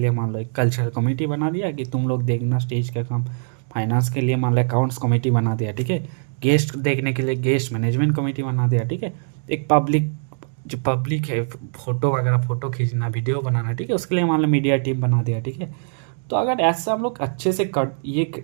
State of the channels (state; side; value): silent; left; digital silence